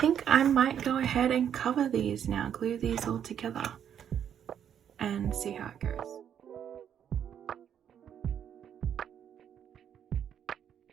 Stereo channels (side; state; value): left; quieter; 9.0 dB